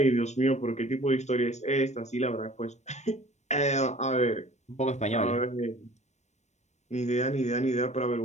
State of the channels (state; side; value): late; right; 0.33 ms